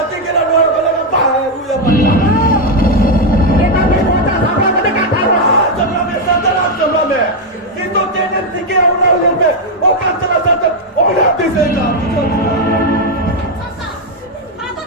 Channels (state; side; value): normal; both; correlation 0.03